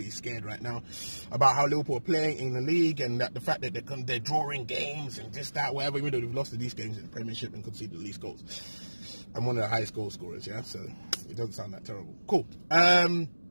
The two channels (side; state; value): both; inverted; correlation -1.00